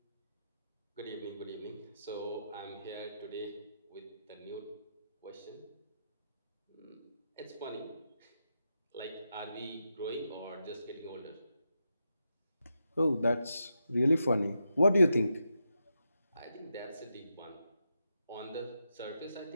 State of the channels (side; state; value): both; inverted; correlation -0.85